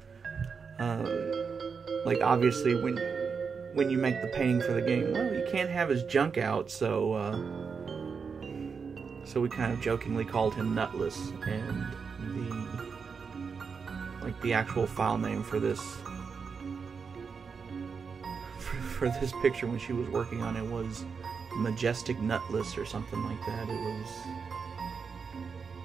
like, obviously when you make the painting for the game, well, you can't have his junk out, so we kind of jokingly called him Nutless, and the actual file name for this picture when she was working on it was Majestic Nutless or something like that. It was,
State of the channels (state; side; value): quieter; left; 5.7 dB